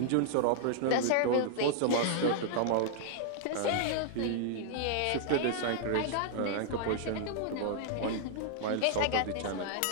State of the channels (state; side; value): different; both; correlation -0.01